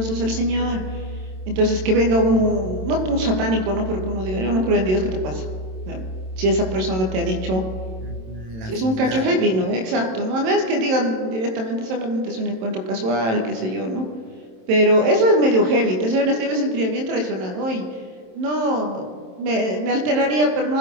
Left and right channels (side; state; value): left; late; 27 ms